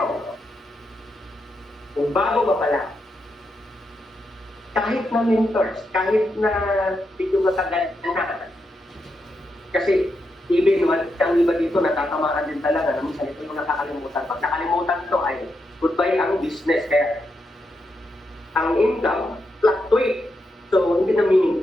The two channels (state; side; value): normal; both; correlation 0.84